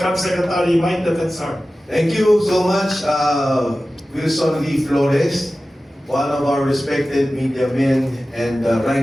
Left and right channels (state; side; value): normal; both; correlation 0.95